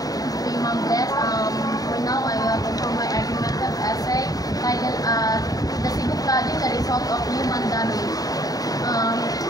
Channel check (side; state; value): right; late; 0.18 ms